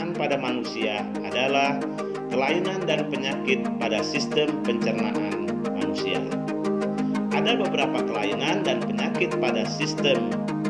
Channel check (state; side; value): identical; both; correlation 1.00